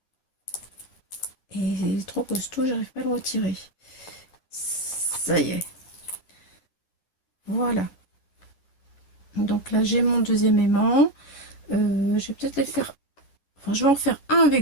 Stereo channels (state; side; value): late; right; 9.8 ms